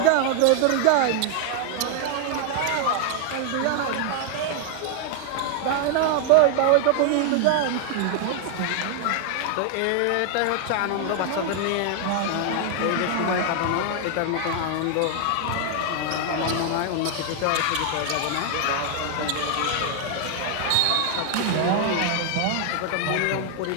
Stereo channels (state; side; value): different; both; correlation 0.00